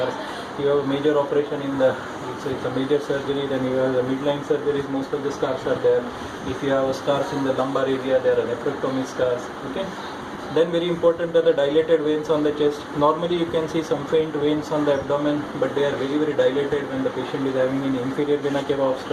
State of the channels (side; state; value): both; identical; correlation 1.00